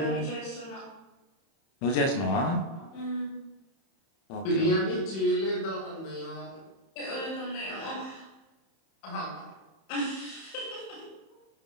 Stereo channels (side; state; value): right; late; 31 ms